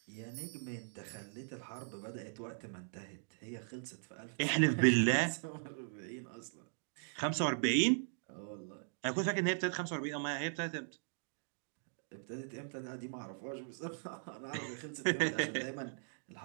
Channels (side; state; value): left; silent; digital silence